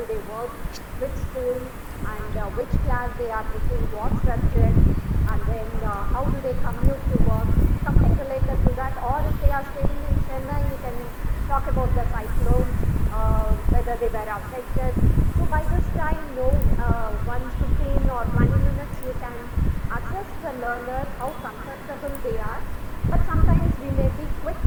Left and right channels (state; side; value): identical; both; correlation 1.00